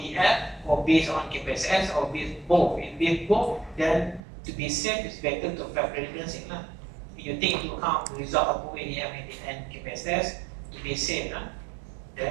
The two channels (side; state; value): left; drops out; at 4.2 s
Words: or based on KPSS or based both. If with both, then to be safe, it's better to apply predicting. If you take into account the result of both ADF and KPSS to be safe,